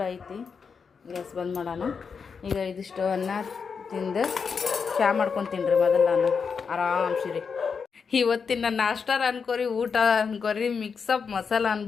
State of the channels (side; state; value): right; quieter; 5.8 dB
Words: ಐತಿ. ಗ್ಯಾಸ್ ಬಂದ್ ಮಾಡೋಣ. ಈಗ ಇದಿಷ್ಟು ಅನ್ನ ತಿಂದು ಚಹಾ ಮಾಡ್ಕೊತೀನಿ ರೀ ಮೊದಲು ನಾನು ಆರಾಮ್ಸಿರಿ. ಇವತ್ತಿನ ನಾಷ್ಟಾರ ಅನ್ಕೋರಿ, ಊಟ ಅನ್ಕೋರಿ, ಮಿಕ್ಸಪ್ ಮಸಾಲ